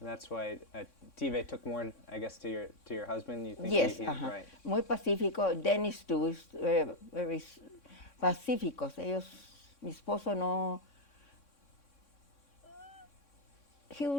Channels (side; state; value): right; late; 3.6 ms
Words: that's why Tive took more, I guess, to your husband. You think Yes, right? muy pacífico. Dennis too is very pacíficos. Ellos, mi esposo no. He